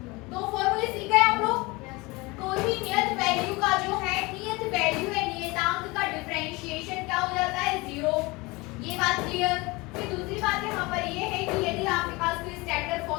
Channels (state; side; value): quieter; right; 24.0 dB